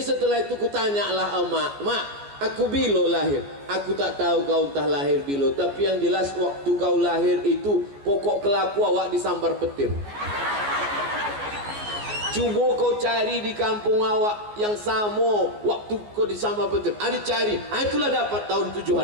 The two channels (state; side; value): late; left; 14 ms